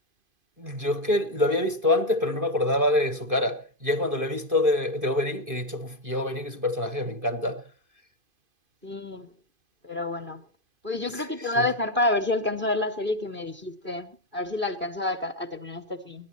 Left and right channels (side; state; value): left; late; 2.5 ms